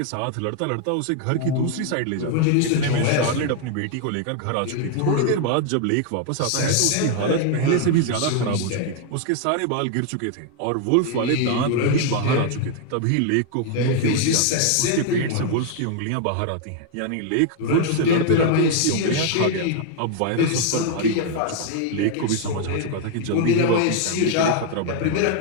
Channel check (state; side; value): different; both; correlation 0.00